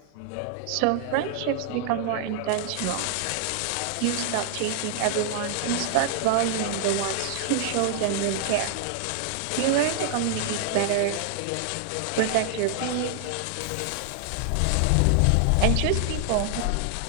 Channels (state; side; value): different; both; correlation 0.00